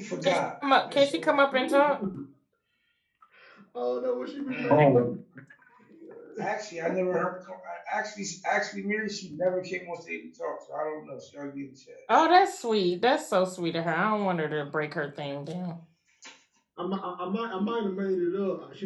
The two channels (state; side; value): identical; both; correlation 1.00